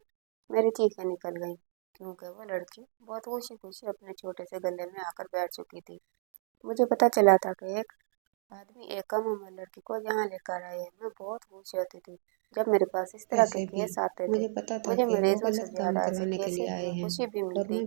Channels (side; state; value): left; silent; digital silence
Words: मेरी चीखें निकल गईं, क्योंकि वो लड़की बहुत खुशी खुशी अपने छोटे से गले में आकर बैठ चुकी थी। मुझे पता चला था कि एक आदमी एक कम उम्र लड़की को यहाँ लेकर आए। मैं बहुत खुश होती थी जब मेरे पास इस तरह के वैसे भी केस आते थे। मुझे पता था मुझे कि वो मरीजों से गलत काम ज़्यादा ऐसे करवाने के लिए केसेस आए में हैं खुशी भी और मिलती। मैं